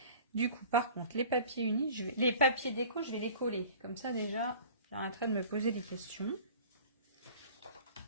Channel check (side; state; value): both; inverted; correlation -0.44